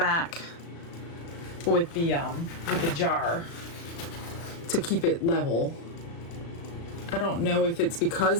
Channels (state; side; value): late; right; 36 ms